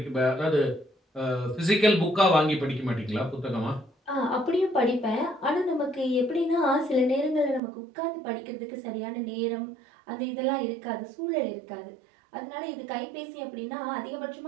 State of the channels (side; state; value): left; drops out; at 7.6 s